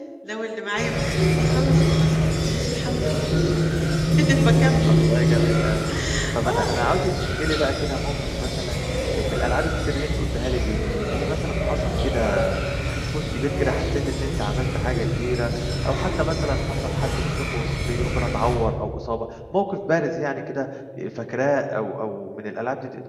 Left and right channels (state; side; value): identical; both; correlation 1.00